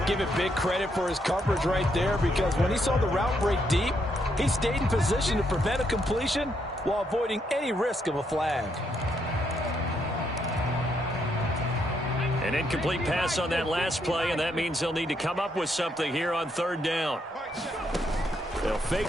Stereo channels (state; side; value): normal; both; correlation 0.76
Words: Give it big credit for his coverage right there, because when he saw the route break deep, he stayed in position to prevent a completion while avoiding any risk of a flag. An incomplete pass on that last play, and that means they'll need to come up with something here on third down. They'll fake